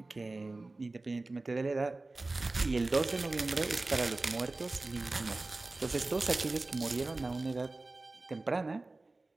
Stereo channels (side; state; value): left; quieter; 3.2 dB